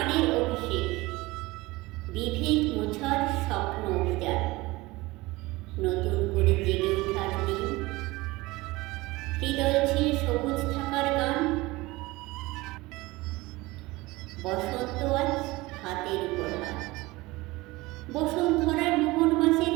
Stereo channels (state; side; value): quieter; left; 21.0 dB